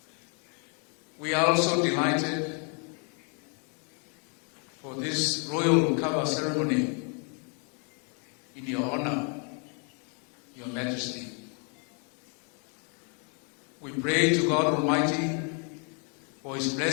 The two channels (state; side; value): quieter; right; 38.5 dB